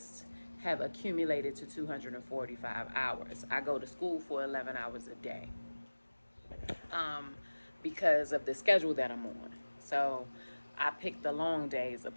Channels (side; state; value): both; inverted; correlation -1.00